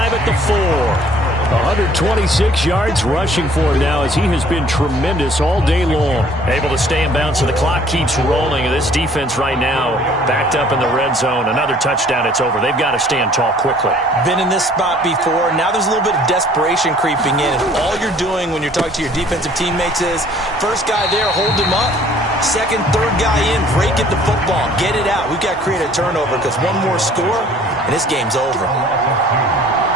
at the 4. 126 yards rushing for him now as he has been tremendous all day long. Able to stay in bounds, so the clock keeps rolling. And this defense right now backed up in the red zone. Another touchdown, it's over. They've got to stand tall quickly. Been in this spot before. Now there's a little bit of desperation creeping in. And all you're doing when you're talking to your defensive teammates is, first guy there, hold him up. Second, third guy in, break it the football. Get it out. We've got to create a turnover because one more score, and this game's over.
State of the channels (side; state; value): both; normal; correlation 0.56